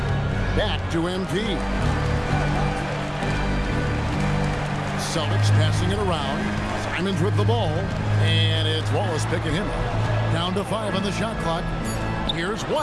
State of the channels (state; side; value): identical; both; correlation 1.00